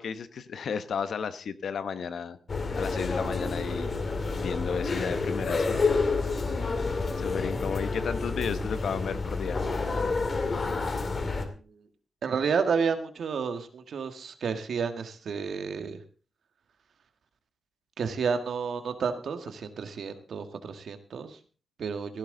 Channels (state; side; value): normal; both; correlation 0.82